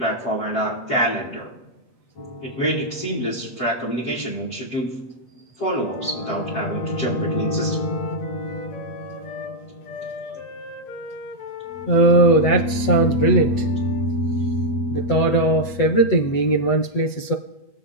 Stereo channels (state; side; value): late; right; 8.0 ms